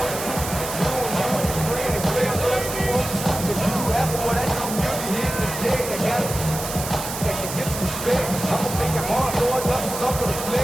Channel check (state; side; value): noise; right; hiss, 7 dB below the sound